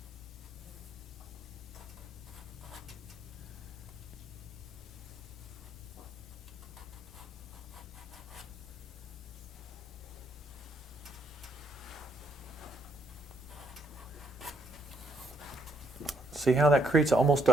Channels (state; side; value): normal; both; correlation 0.72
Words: See how that creates almost